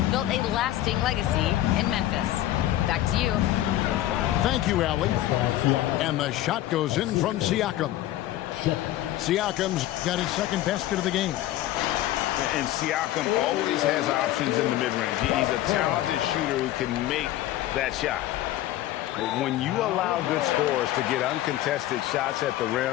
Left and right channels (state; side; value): quieter; right; 14.2 dB